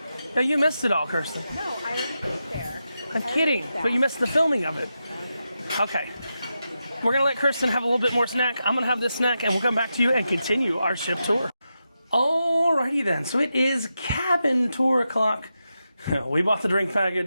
Yeah, you missed it all, Kirsten. No, I already ate there. I'm kidding, but you missed the filming of it. Okay. We're gonna let Kirsten have a little bit more snack. I'm gonna have this snack and we'll come back to you and continue our ship tour. Alrighty then, so it is cabin tour o'clock. We bought the drink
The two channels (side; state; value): both; inverted; correlation -0.88